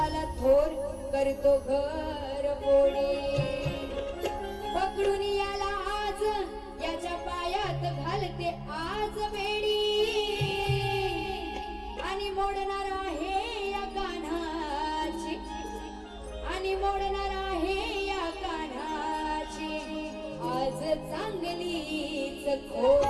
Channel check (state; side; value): identical; both; correlation 1.00